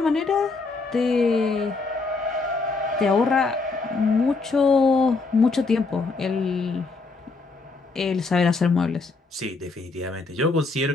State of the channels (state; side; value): quieter; right; 3.9 dB